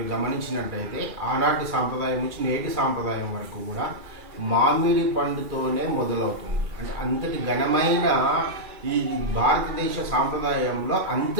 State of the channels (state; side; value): late; left; 2.4 ms